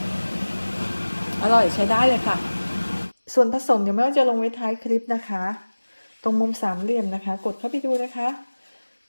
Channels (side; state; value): both; inverted; correlation -1.00